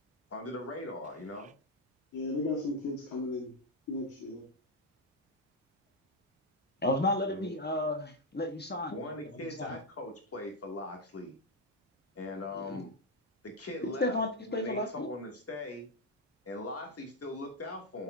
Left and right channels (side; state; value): both; normal; correlation 0.05